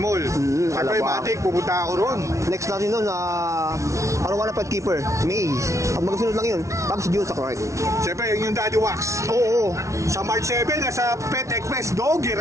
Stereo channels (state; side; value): late; left; 0.14 ms